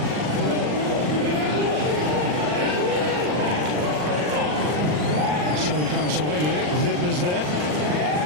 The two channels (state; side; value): late; left; 40 ms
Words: So he comes away with it. Vidma's there.